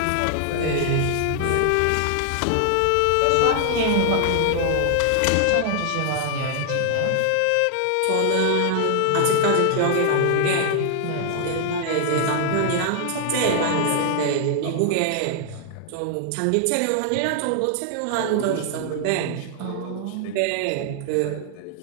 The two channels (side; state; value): both; different; correlation 0.00